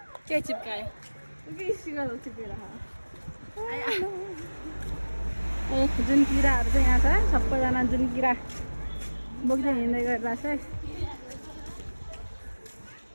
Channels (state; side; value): inverted; both; correlation -1.00